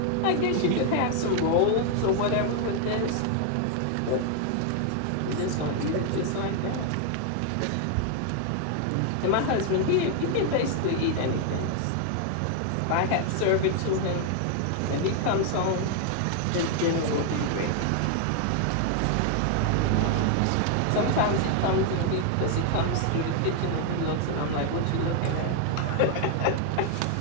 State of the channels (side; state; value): both; different; correlation 0.00